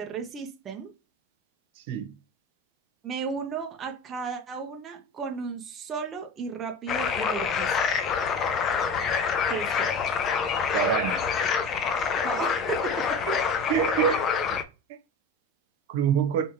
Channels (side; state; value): both; normal; correlation 0.31